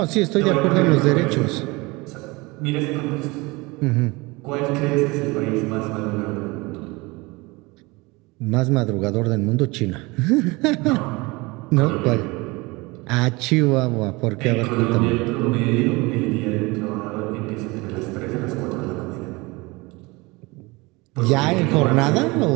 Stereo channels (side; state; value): left; quieter; 24.2 dB